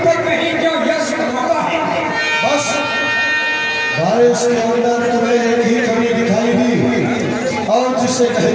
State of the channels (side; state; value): both; identical; correlation 1.00